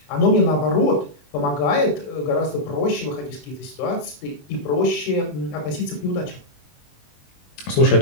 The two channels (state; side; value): late; right; 21 ms